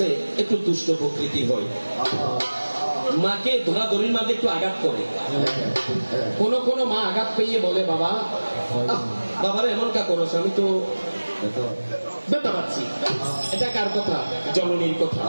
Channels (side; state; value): both; inverted; correlation -1.00